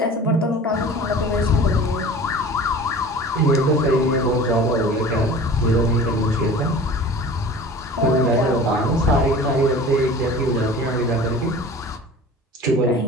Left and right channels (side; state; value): both; normal; correlation 0.40